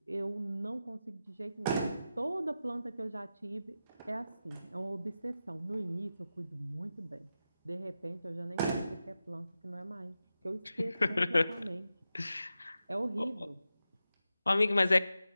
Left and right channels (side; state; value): both; inverted; correlation -0.92